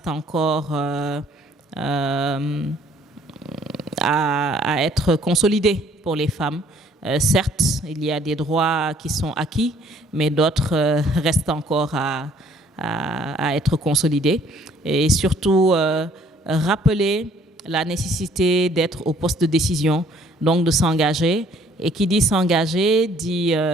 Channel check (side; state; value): both; normal; correlation 0.60